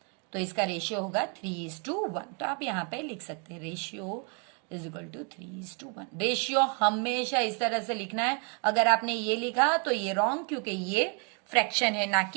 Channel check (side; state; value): left; quieter; 37.5 dB